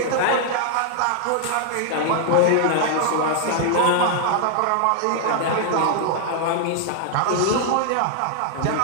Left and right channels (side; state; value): both; different; correlation 0.00